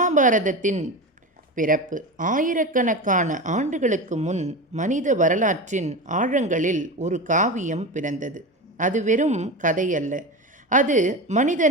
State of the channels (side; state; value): both; normal; correlation 0.24